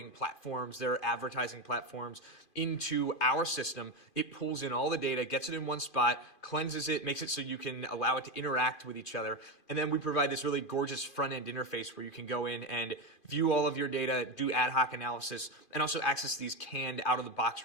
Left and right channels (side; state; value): right; late; 2.5 ms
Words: platforms, their advertising platforms into our system. It pulls in all the data, gets it in one spot, cleanses it, makes it so you can allow it to interact with each other. And then we provide this really gorgeous front-end interface where you can go in and view all of your data, do ad hoc analysis, and also access these canned out-of-the-box